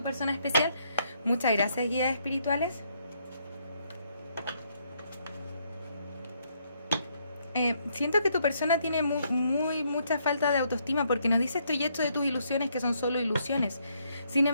persona especial. Muchas gracias, guías espirituales. Siento que tu persona tiene mucha falta de autoestima, porque nos dice, estoy hecho de tus ilusiones, que son solo ilusiones. Sin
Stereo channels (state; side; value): inverted; both; correlation -0.72